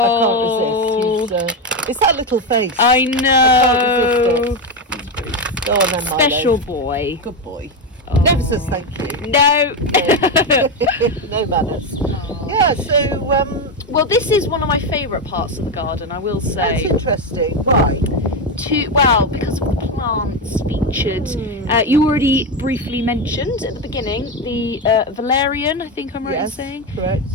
I can't resist. It's that little face. I know. Go on then, Milo. Special boy. Good boy. Oh. Never says thank you. No. No manners. Yeah, so Well, this is one of my favourite parts of the garden, I will say. that's interesting. Why? Because of the plants featured. You already briefly mentioned at the beginning the valerian, I think I'm right in saying. Correct.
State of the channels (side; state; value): both; normal; correlation 0.11